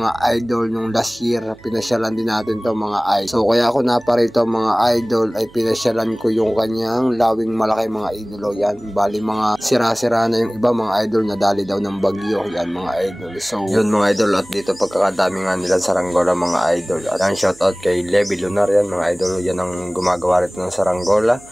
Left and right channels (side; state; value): right; noise; hum, 25 dB below the sound